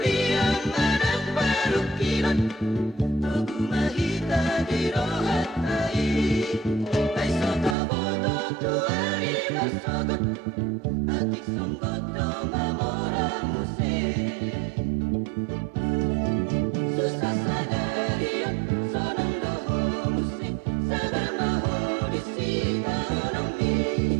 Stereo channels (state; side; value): drops out; left; at 7.8 s